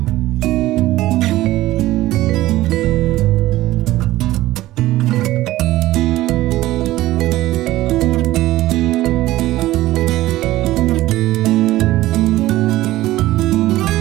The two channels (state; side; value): quieter; left; 16.3 dB